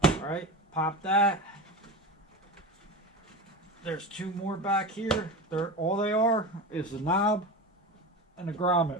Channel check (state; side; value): normal; both; correlation 0.26